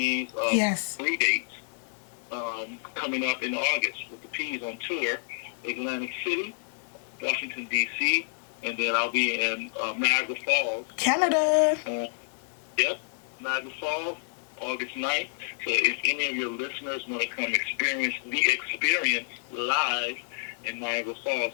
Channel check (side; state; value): right; silent; 59 dB below the other